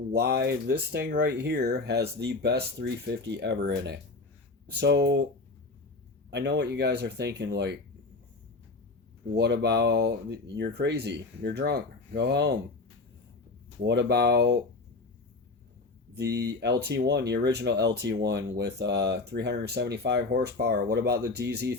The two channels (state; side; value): quieter; right; 3.6 dB